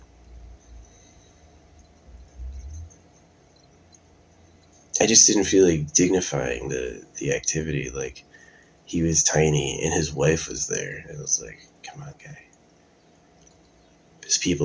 I just didn't feel like dignifying the activity. Like he was tiny and his wife was there. I was like, come on, guy. There's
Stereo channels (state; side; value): identical; both; correlation 1.00